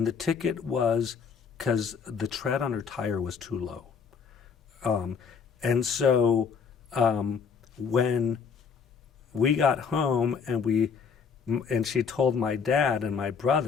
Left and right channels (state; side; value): quieter; right; 6.0 dB